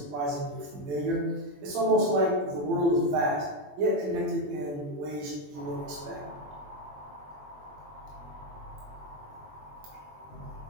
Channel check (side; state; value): left; late; 21 ms